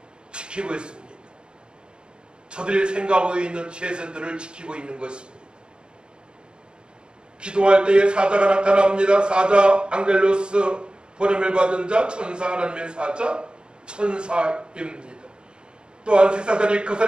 지키고 있습니다. 저들이 생각하고 있는 최선들을 지키고 있는 것입니다. 기도할 때에 사자가 나타납니다. 사자 앙겔로스, 보냄을 받은 자, 천사, 하나님의 사자, 천사입니다. 또한 새사슬이 그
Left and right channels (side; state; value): left; late; 0.051 ms